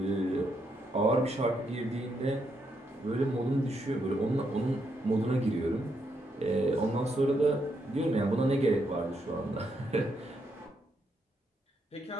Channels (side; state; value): both; normal; correlation 0.78